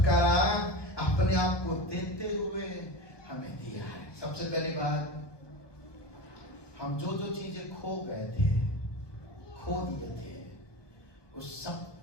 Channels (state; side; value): late; right; 1.2 ms